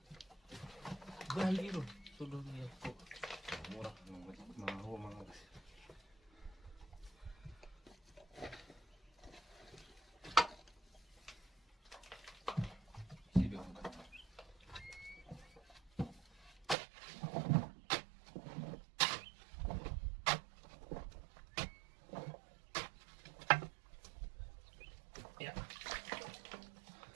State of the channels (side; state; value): left; drops out; at 16.8 s